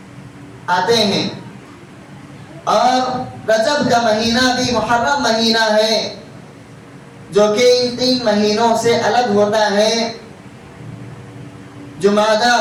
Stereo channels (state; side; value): identical; both; correlation 1.00